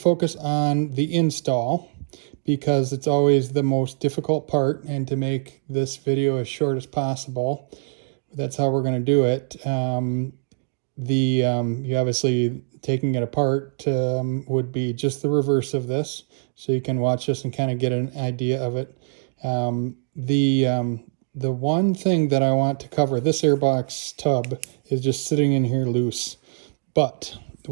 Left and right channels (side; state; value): left; silent; digital silence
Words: on the install because it's always the most difficult part, and to make this video as short as possible, that's how we're going to do it. You obviously taking it apart would be just the reverse of this, so you can watch this and kind of get an idea of it. The one thing that I want to cover, this airbox tub is just sitting in here loose, but